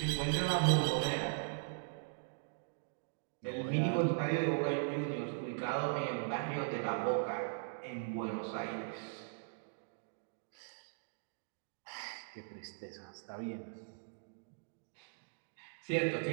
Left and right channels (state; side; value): silent; left; digital silence